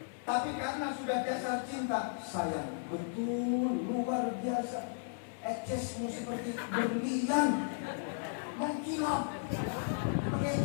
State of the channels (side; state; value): right; silent; digital silence